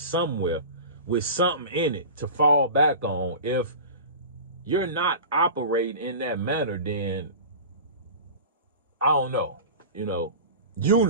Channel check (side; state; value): both; inverted; correlation -0.34